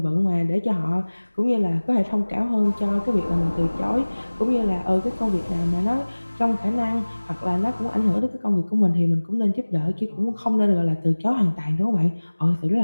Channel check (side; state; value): both; inverted; correlation -1.00